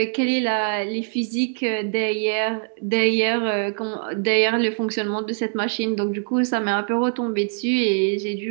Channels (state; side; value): silent; left; digital silence